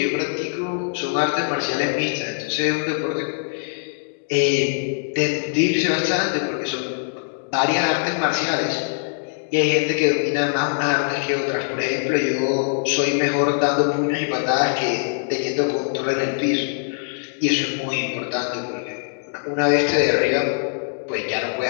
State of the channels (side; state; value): right; silent; digital silence